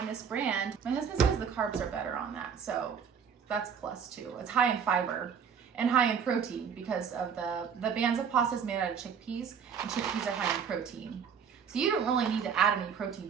this brand. My husband says the carbs are better on that, so that's plus too. It's high in fiber and high in protein because of the Banza pasta is made out of chickpeas, and chickpeas are high in protein. So you don't really need to add any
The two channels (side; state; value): left; quieter; 7.1 dB